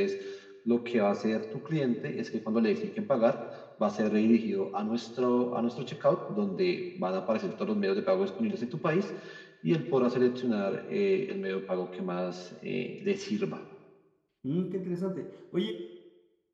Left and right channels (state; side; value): identical; both; correlation 1.00